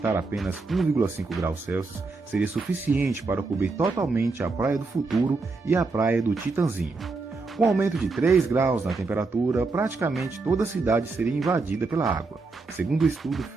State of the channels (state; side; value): quieter; left; 3.8 dB